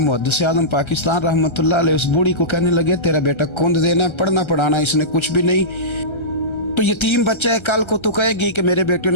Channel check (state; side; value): late; right; 1.3 ms